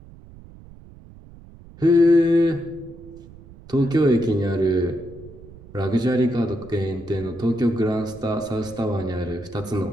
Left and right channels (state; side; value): noise; right; rumble, 20 dB below the sound